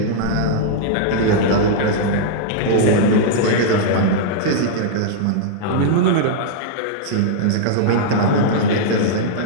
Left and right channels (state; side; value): different; both; correlation -0.02